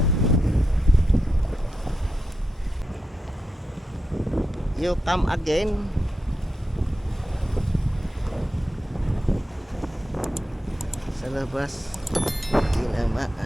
You come again. Sa labas.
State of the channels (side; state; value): both; normal; correlation 0.88